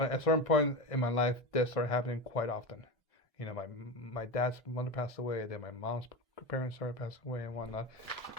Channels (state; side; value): normal; both; correlation 0.22